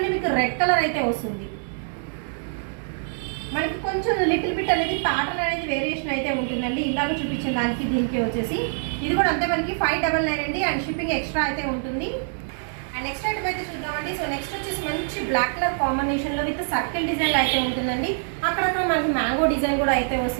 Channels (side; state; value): left; silent; digital silence